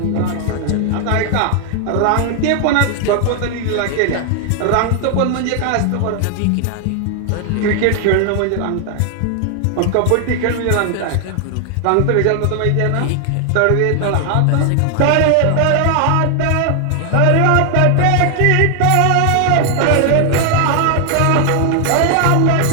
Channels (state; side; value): different; both; correlation 0.00